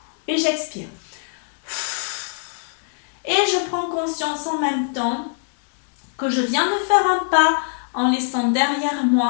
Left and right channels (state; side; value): silent; right; 62 dB below the other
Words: Et j'expire. Et je prends conscience en même temps que je viens de faire un pas en laissant derrière